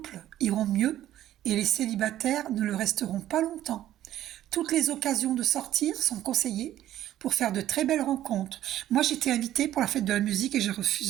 iront mieux et les célibataires ne le resteront pas longtemps. Toutes les occasions de sortir sont conseillées pour faire de très belles rencontres. Moi, j'étais invitée pour la fête de la musique et j'ai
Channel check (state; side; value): quieter; left; 12.8 dB